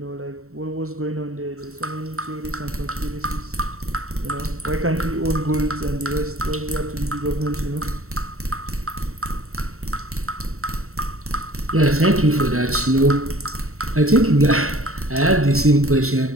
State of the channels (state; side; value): late; left; 0.63 ms